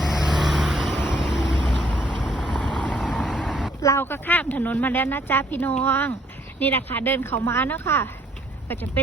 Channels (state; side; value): normal; both; correlation 0.65